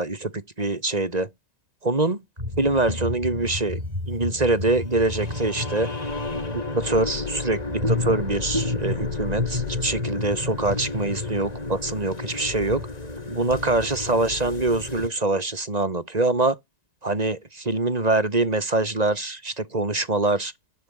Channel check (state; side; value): late; left; 1.9 ms